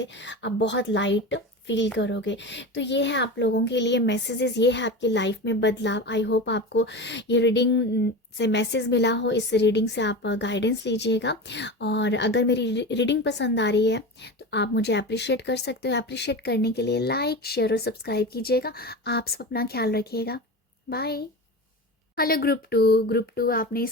आप बहुत लाइट फील करोगे। तो ये है आप लोगों के लिए मैसेजेस, ये है आपकी लाइफ में बदलाव। आई होप आपको ये रीडिंग से मैसेज मिला हो। इस रीडिंग से आप गाइडेंस लीजिएगा, और अगर मेरी रीडिंग पसंद आ रही है तो आप मुझे अप्रिशिएट कर सकते हो। अप्रिशिएट करने के लिए लाइक, शेयर और सब्सक्राइब कीजिएगा। आप सब अपना ख्याल रखिएगा। बाय। हेलो ग्रुप टू आपने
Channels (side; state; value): both; normal; correlation 0.27